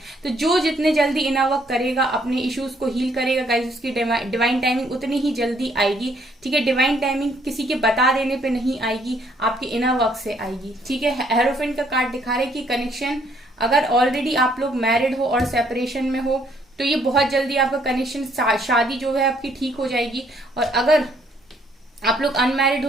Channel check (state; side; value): normal; both; correlation 0.66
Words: तो जो जितने जल्दी इनर वर्क करेगा, अपने इश्यूज को हील करेगा गाइस, उसकी डिवाइन टाइमिंग उतनी ही जल्दी आएगी। ठीक है, डिवाइन टाइमिंग किसी के बता देने पे नहीं आएगी, आपके इनर वर्क से आएगी। ठीक है, हेरोफेंट का कार्ड दिखा रहे कि कनेक्शन, अगर ऑलरेडी आप लोग मैरिड हो और सेपरेशन में हो तो ये बहुत जल्दी आपका कनेक्शन, शादी जो है आपकी ठीक हो जाएगी। और अगर आप लोग अनमैरिड हो